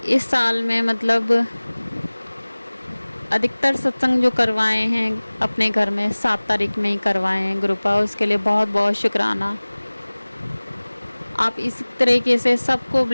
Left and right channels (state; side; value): inverted; both; correlation -1.00